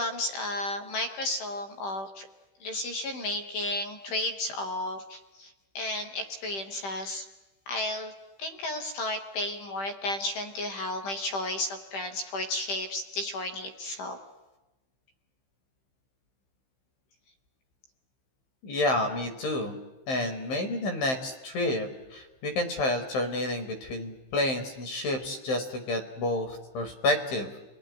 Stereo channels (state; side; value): late; right; 15 ms